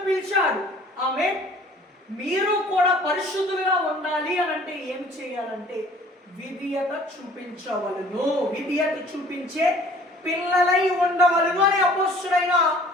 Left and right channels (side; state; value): both; normal; correlation 0.52